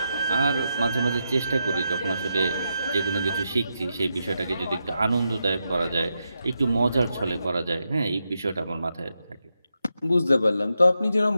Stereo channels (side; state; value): both; inverted; correlation -0.85